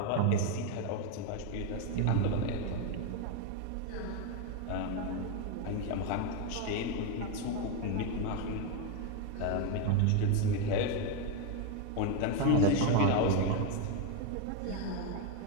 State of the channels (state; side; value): different; both; correlation 0.02